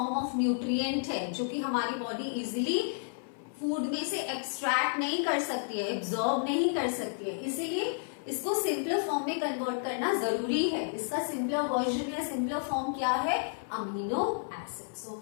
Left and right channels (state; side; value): silent; right; 55 dB below the other